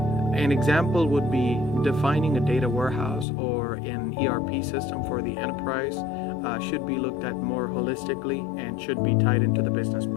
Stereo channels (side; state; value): right; drops out; at 3.2 s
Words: An example would be defining a data warehouse or an ERP system for the enterprise should be looked at more holistically and should be tied into the business